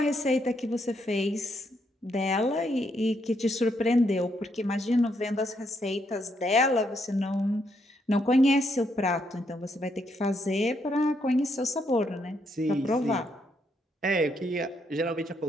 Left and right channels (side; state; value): both; normal; correlation 0.76